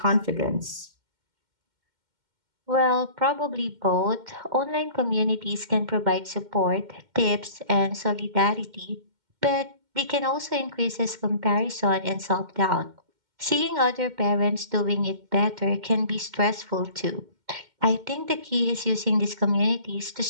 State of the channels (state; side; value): late; left; 2.1 ms